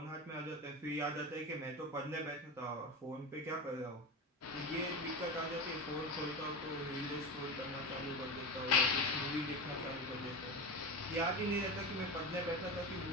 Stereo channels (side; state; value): both; normal; correlation 0.23